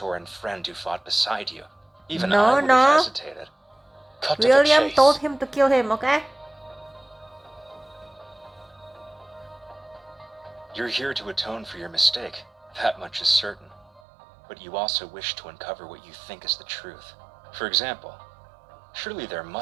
and friend who fought beside you. Even I would have hesitated. Cut to the William chase. told him to kill him, okay? You're here to atone for your mistake. That much is certain. But you also wish to uncover what you think is the truth. For example, surely there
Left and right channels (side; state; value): left; drops out; at 14.0 s